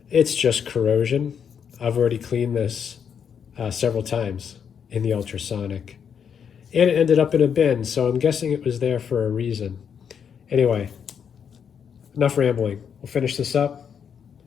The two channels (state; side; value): quieter; right; 7.5 dB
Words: It's just corrosion. I've already cleaned this several times in the ultrasonic. And it ended up in a bin, so I'm guessing it was there for a reason. Anyway, enough rambling. We'll finish this up,